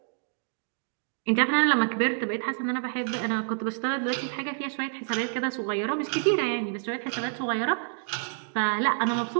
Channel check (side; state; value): left; silent; digital silence